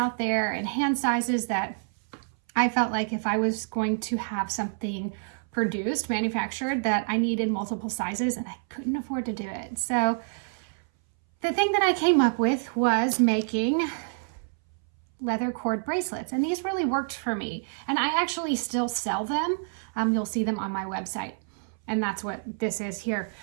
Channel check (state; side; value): silent; left; 60 dB below the other